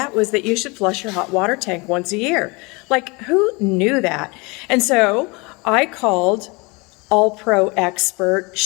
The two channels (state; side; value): quieter; right; 27.4 dB